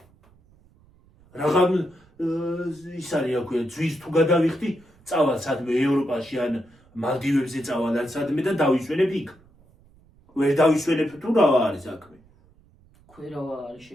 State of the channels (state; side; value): noise; right; rumble, 30 dB below the sound